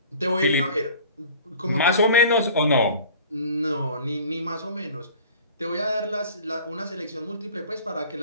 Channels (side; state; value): both; inverted; correlation -0.45